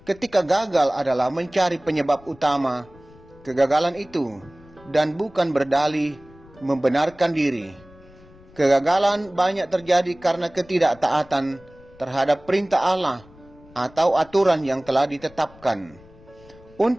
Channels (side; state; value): left; noise; rumble, 25 dB below the sound